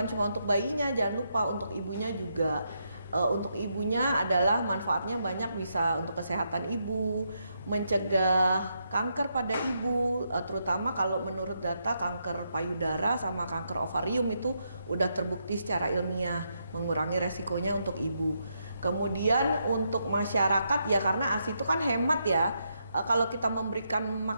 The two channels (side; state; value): both; inverted; correlation -0.80